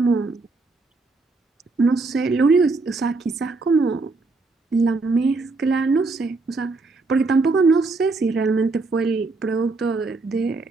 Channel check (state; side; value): quieter; left; 3.6 dB